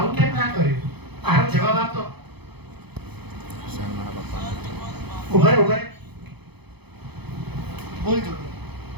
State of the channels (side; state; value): left; late; 0.98 ms